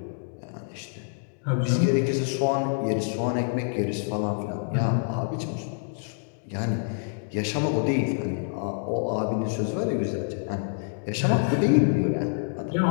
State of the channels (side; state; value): right; silent; digital silence